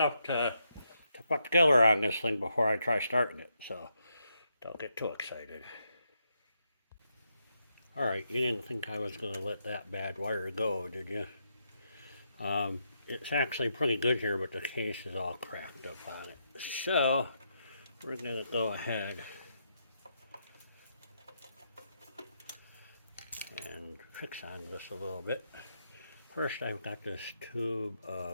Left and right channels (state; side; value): inverted; both; correlation -0.80